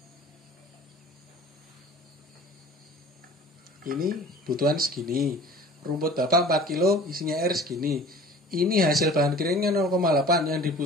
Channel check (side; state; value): both; normal; correlation 0.45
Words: Ini butuhan segini. Rumput bapak 4 kilo isinya air segini. Ini hasil bahan keringnya 0,8 yang